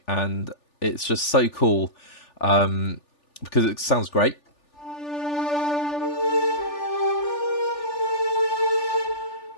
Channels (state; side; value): late; right; 3.4 ms